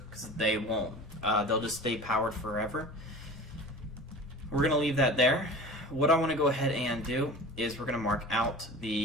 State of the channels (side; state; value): both; normal; correlation 0.38